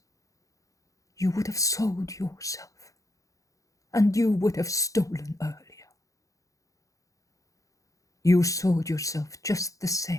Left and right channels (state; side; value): late; right; 0.16 ms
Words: you would have sold yourself, and you would have stolen earlier. You sold yourself just the